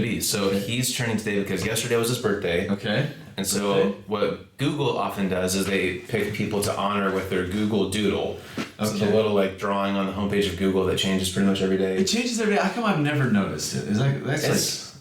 be. So he's trending today because yesterday was his birthday. Okay. And so what Google often does is they pick people to honor with their Google Doodle. So it's a little like drawing on the homepage of Google that changes pretty much every day. It changes every day. How come I've never noticed it? That's like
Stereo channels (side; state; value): both; identical; correlation 1.00